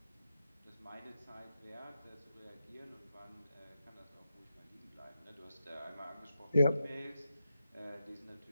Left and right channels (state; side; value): inverted; both; correlation -0.87